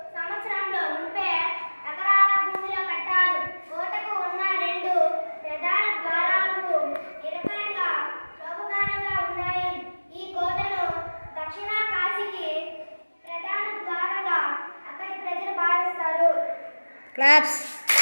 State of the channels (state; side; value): inverted; both; correlation -1.00